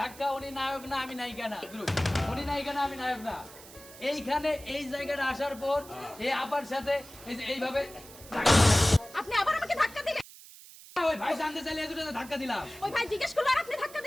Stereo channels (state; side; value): noise; right; hiss, 18 dB below the sound